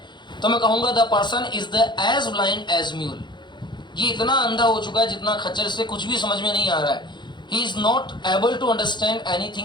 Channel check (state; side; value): late; right; 0.22 ms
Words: तो मैं कहूंगा the person is the as blind as mule. ये इतना अंधा हो चुका है जितना खच्चर, से कुछ भी समझ में नहीं आ रहा है. He is not able to understand